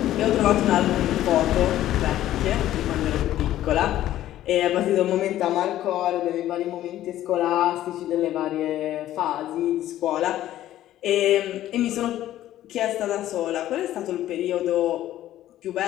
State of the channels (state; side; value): quieter; right; 13.3 dB